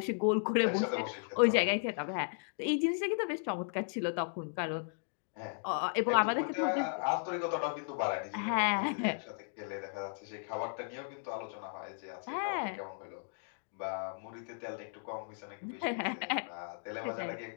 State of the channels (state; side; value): silent; right; digital silence